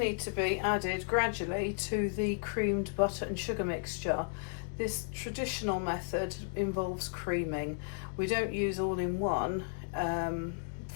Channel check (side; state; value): right; quieter; 39.2 dB